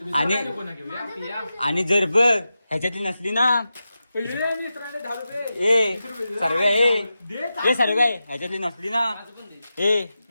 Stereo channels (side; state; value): both; inverted; correlation -0.91